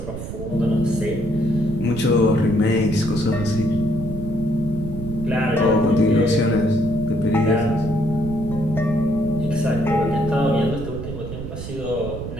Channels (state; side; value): noise; right; rumble, 9 dB below the sound